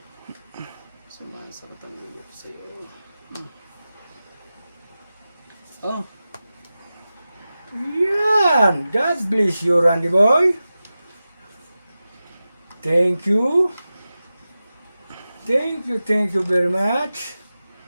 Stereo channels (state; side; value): inverted; both; correlation -0.95